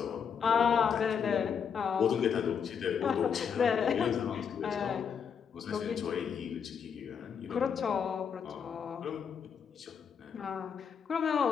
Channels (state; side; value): quieter; right; 7.0 dB